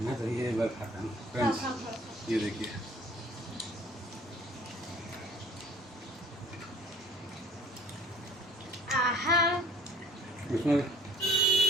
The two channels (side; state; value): both; normal; correlation 0.51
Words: मैं, तो ये एक बार खाता हूँ फ्रेंड्स। ये देखिए इसमें